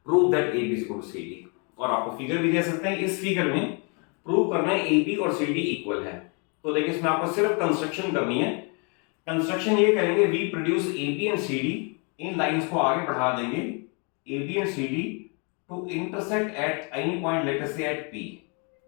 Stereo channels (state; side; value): quieter; right; 35.2 dB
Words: prove that AB is equal to CD। और आपको फिगर भी दे सकते हैं, इस फिगर में प्रूव करना है AB और CD इक्वल है। तो देखिए इसमें आपको सिर्फ कंस्ट्रक्शन करनी है। कंस्ट्रक्शन ये करेंगे, we produce AB and CD, इन लाइंस को आगे बढ़ा देंगे AB and CD to intersect at any point, let us say at P।